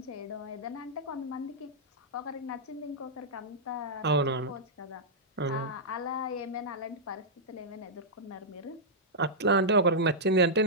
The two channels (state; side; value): normal; both; correlation -0.09